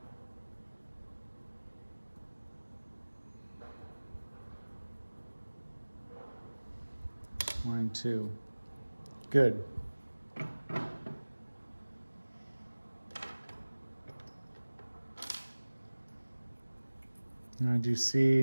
One, 2. Good. Now I do see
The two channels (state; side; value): inverted; both; correlation -1.00